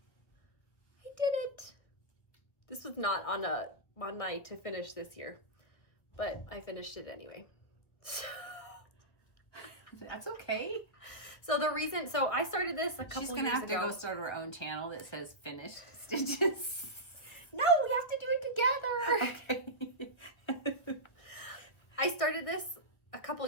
I did it. This was not on my to finish this year, but I finished it anyway. That's okay. So I started this a couple years ago. She's gonna have to go start her own channel that says finished stitches. No, we have to do it together. Okay. I started this a couple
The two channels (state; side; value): late; right; 1.5 ms